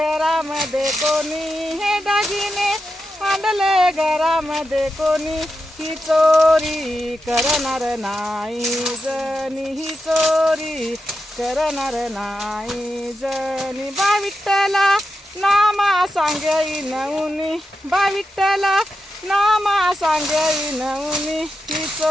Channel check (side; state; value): both; normal; correlation 0.89